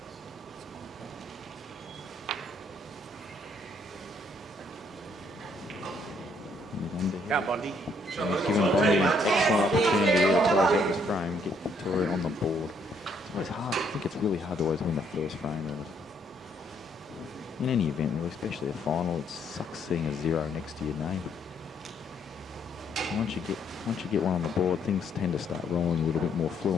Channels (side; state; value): both; normal; correlation 0.69